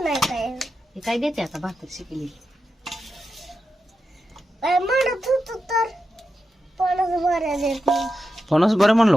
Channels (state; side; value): normal; both; correlation 0.89